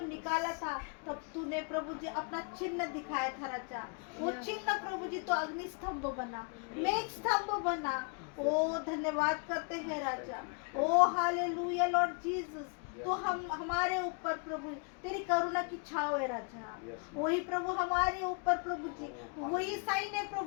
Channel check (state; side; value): quieter; right; 37.5 dB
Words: निकाला था तब तूने प्रभु जी अपना चिन्ह दिखाया था राजा। वो चिन्ह प्रभु जी तो अग्नि स्तंभ बना, मेघ स्तंभ बना। ओ धन्यवाद करते हैं राजा। ओ हालेलुया लॉर्ड जीसस। तो हम हमारे ऊपर प्रभु तेरी करुणा की छाव है राजा। वही प्रभु हमारे ऊपर प्रभु जी वही साइन है